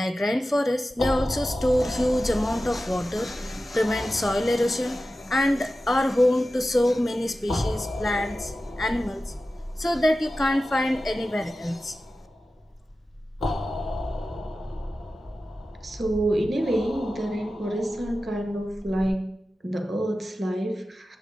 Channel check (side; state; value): both; normal; correlation 0.94